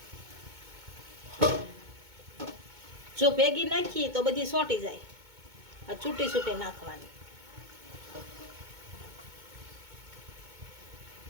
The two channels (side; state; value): left; late; 2.2 ms